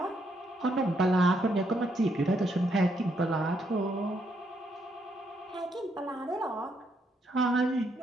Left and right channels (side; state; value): both; normal; correlation 0.75